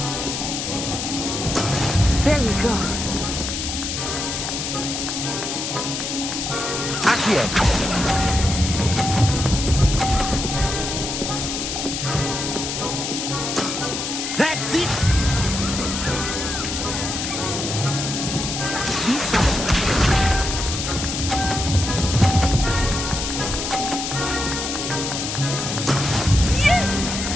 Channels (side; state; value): left; noise; hiss, 3 dB below the sound